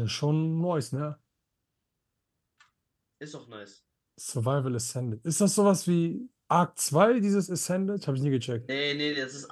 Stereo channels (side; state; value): both; identical; correlation 1.00